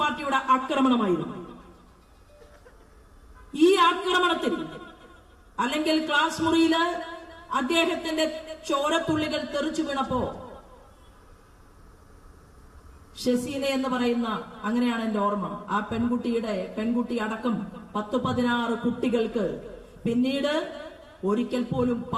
ആക്രമണമായിരുന്നു. ഈ ആക്രമണത്തിൽ, അല്ലെങ്കിൽ ക്ലാസ് മുറിയില് അദ്ദേഹത്തിന്റെ ചോരത്തുള്ളികൾ തെറിച്ചു വീണപ്പോ ഷെസീന എന്ന് പറയുന്ന, അങ്ങനെയാണ് എന്റെ ഓർമ്മ, ആ പെൺകുട്ടി അടക്കം 10-16 കുട്ടികൾക്ക് പിന്നീട് ഒരിക്കൽ പോലും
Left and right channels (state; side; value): identical; both; correlation 1.00